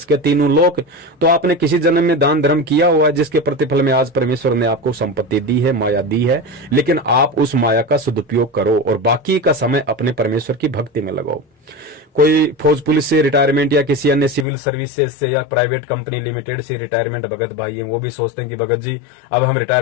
के 3 लोक। तो आपने किसी जन्म में दान धर्म किया हुआ है जिसके प्रतिफल में आज परमेश्वर ने आपको संपत्ति दी है, माया दी है, लेकिन आप उस माया का सदुपयोग करो और बाकी का समय अपने परमेश्वर की भक्ति में लगाओ। कोई फौज पुलिस से रिटायरमेंट या किसी अन्य सिविल सर्विसेज से या प्राइवेट कंपनी लिमिटेड से रिटायरमेंट भगत भाई हैं, वो भी सोचते हैं कि भगत जी अब हम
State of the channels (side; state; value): right; drops out; at 14.5 s